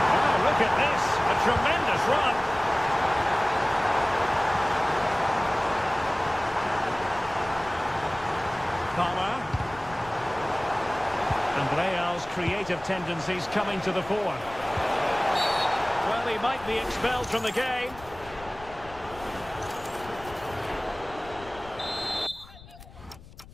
Oh, look at this. A tremendous run. Palmer. And Real's creative tendencies coming to the fore. Well, he might be expelled from the game.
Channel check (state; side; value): noise; left; rumble, 19 dB below the sound